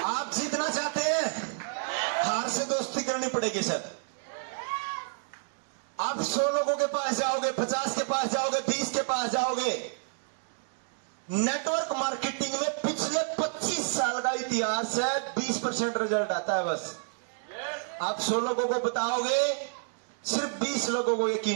आप जीतना चाहते हैं, हार से दोस्ती करनी पड़ेगी सर। आप 100 लोगों के पास जाओगे, 50 के पास जाओगे, 20 के पास जाओगे। नेटवर्क मार्केटिंग में पिछले 25 साल का इतिहास है, 20% रिजल्ट आता है बस। आप 100 लोगों को बताओगे, सिर्फ 20 लोगों को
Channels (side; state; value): left; silent; digital silence